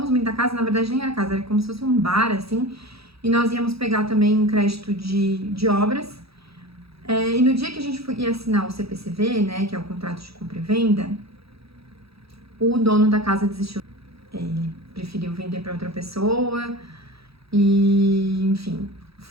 muito da casa, na verdade nem era casa, era como se fosse um bar, assim. E nós íamos pegar também um crédito de obras. E no dia que a gente ia assinar o CPCV, né, que é o contrato de compra e venda, o dono da casa desistiu. Ele preferiu vender para outra pessoa. E, enfim,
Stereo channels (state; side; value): late; left; 0.77 ms